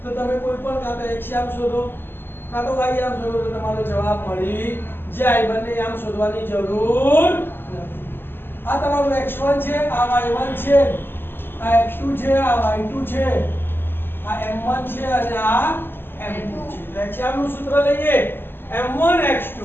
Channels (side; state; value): right; late; 0.10 ms